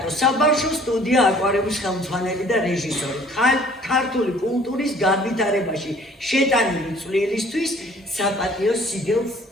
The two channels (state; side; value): normal; both; correlation 0.54